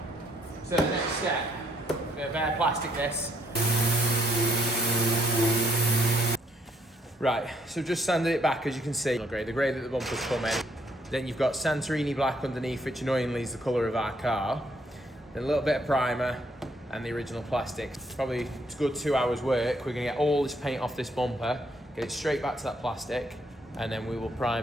So the next step, we're going to bare plastic this. Right, so just sanded it back as you can see. The grey that the bumpers come in. Then you've got Santorini black underneath, which annoyingly is the colour of our car. Then a little bit of primer and the original plastic. Probably a good 2 hours work. We're going to get all this paint off this bumper, get it straight back to that plastic, and then we will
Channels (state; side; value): normal; both; correlation 0.69